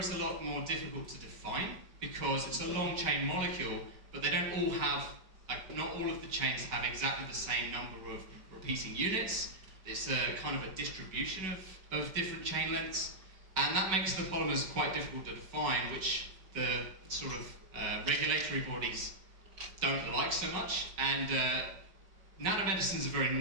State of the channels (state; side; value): late; left; 5.2 ms